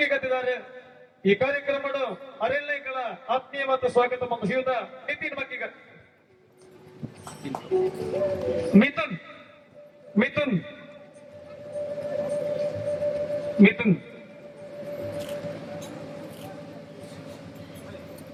ಗತ್ತಿದ್ದಾರೆ. ಈ ಕಾರ್ಯಕ್ರಮದ ಅರೆಲ್ಲ ಆತ್ಮೀಯ ಮತ್ತು ಸ್ವಾಗತ ಮತ್ತು ಶ್ರೀಯುತ ನಿತಿನ್ ಮಕ್ಕಿಗ ಮಿಥುನ್ ಮಿಥುನ್ ಮಿಥುನ್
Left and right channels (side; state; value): both; identical; correlation 1.00